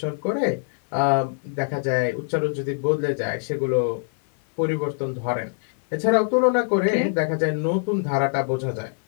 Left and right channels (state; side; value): silent; right; 56 dB below the other